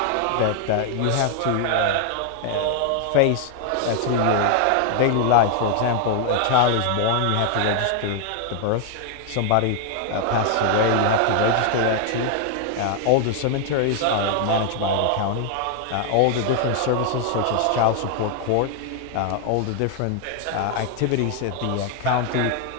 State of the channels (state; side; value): different; both; correlation 0.00